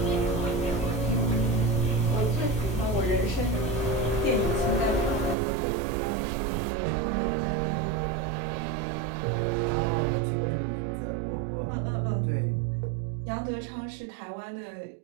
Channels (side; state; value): left; drops out; at 5.4 s